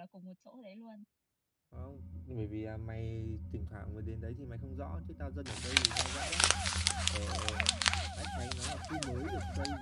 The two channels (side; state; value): both; identical; correlation 1.00